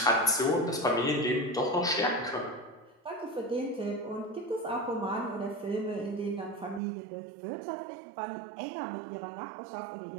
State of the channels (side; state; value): left; drops out; at 6.8 s